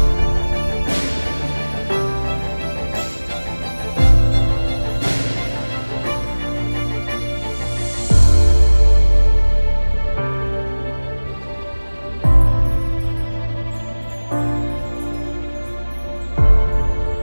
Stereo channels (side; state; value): both; inverted; correlation -1.00